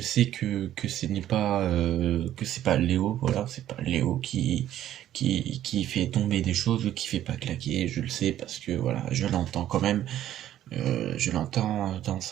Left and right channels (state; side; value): quieter; left; 12.2 dB